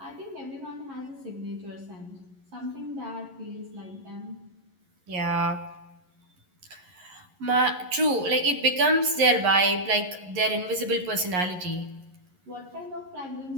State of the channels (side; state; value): left; late; 11 ms